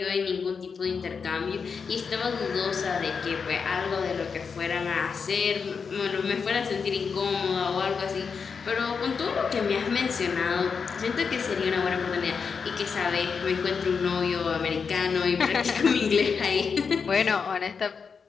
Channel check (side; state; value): right; quieter; 5.7 dB